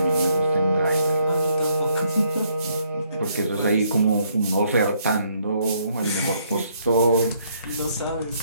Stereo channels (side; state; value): both; inverted; correlation -0.70